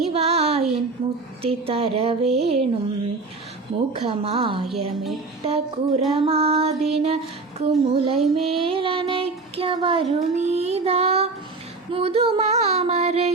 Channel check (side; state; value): left; quieter; 3.8 dB